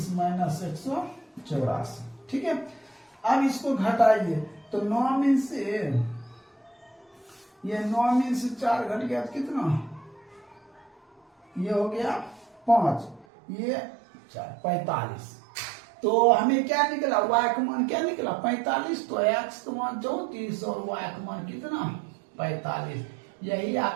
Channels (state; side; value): drops out; left; at 13.2 s